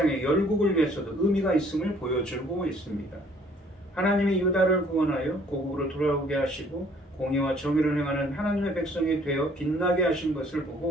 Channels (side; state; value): both; normal; correlation 0.59